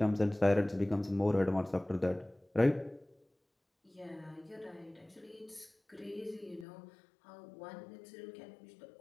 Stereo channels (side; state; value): right; drops out; at 6.7 s